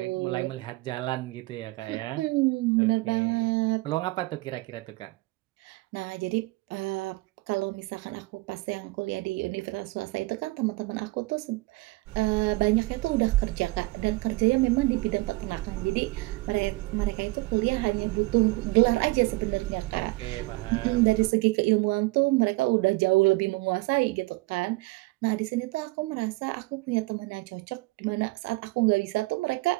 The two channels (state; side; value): quieter; left; 22.6 dB